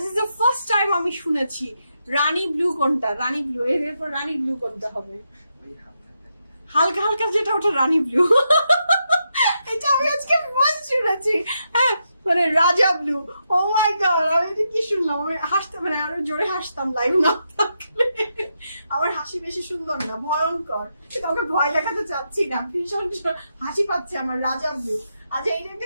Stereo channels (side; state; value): both; inverted; correlation -0.83